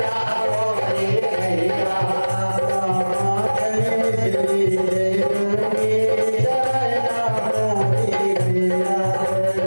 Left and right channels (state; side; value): inverted; both; correlation -1.00